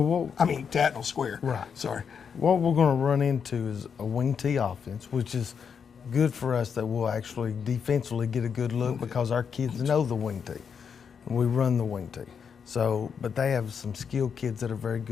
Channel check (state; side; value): quieter; right; 6.8 dB